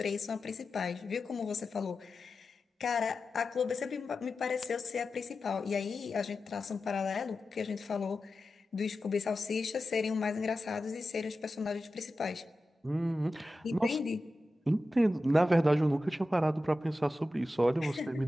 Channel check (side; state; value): both; normal; correlation 0.92